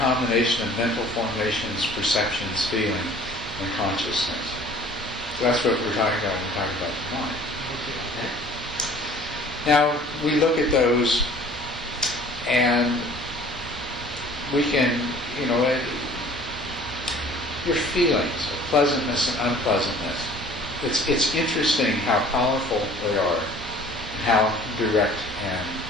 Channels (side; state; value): both; normal; correlation 0.50